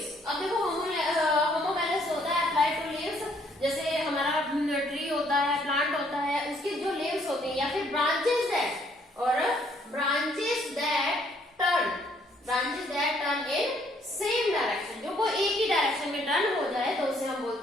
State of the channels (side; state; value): both; normal; correlation 0.66